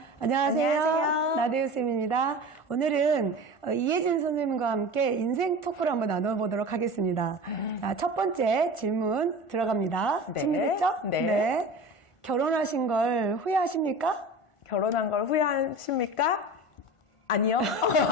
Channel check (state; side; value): late; right; 1.4 ms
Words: 안녕하세요. 나대유쌤입니다. 오늘은 이혜진 선생님과 함께 인생 토크를 한번 나눠보도록 하겠습니다. 자, 첫 번째 질문 들어갑니다. 네. 준비됐죠? 네. 결혼하신 걸 후회하십니까? 결혼한 걸 후회하십니까? 아니요.